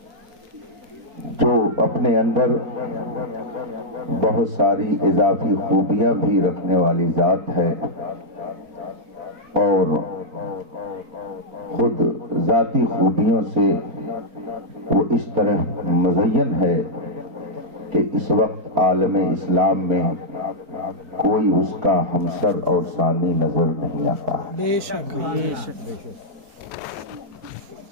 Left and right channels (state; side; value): late; left; 4.4 ms